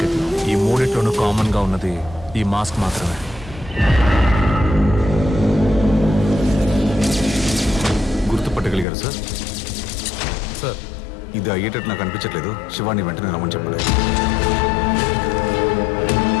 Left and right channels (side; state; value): right; drops out; at 8.8 s